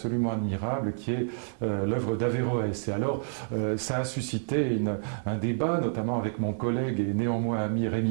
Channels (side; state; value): left; silent; 59 dB below the other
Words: admirable, qui est l'œuvre d'Averroès. Et alors, ça a suscité un débat, notamment avec mon collègue et néanmoins ami